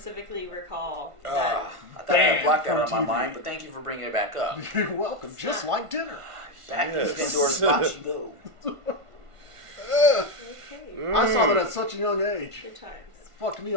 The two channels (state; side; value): late; left; 1.5 ms